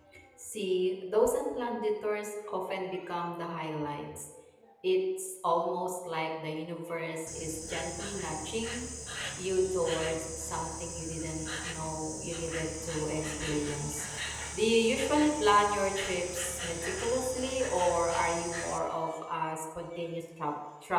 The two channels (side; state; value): both; identical; correlation 1.00